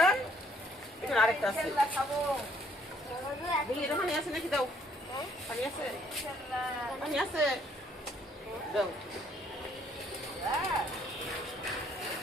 এখানে আরেকটা আছে, দেখি এটা পানি আছে নাকি, দাও। পানি আছে, পানি আছে, দাও।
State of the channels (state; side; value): normal; both; correlation 0.65